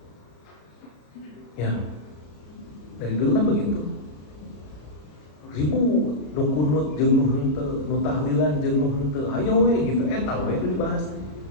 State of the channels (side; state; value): right; late; 33 ms